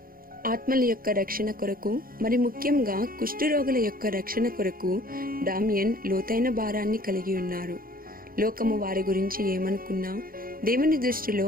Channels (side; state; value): left; late; 0.42 ms